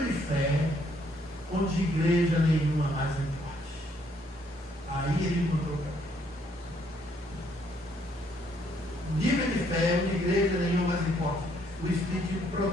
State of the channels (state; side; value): normal; both; correlation 0.69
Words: de fé onde igreja nenhuma mais importa. Aí ele encontrou o caminho. Nível de fé, onde igreja nenhuma mais importa. O Espiritismo